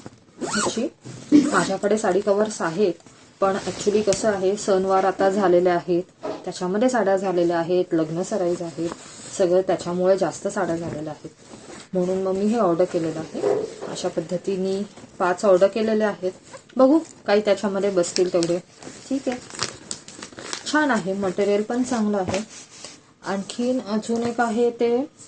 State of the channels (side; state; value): both; identical; correlation 1.00